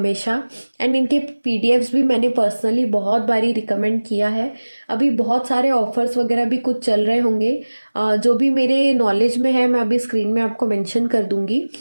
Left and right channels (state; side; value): inverted; both; correlation -1.00